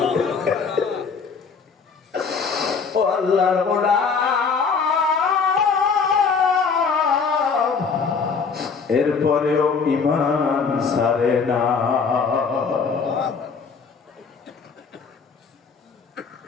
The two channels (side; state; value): right; quieter; 5.4 dB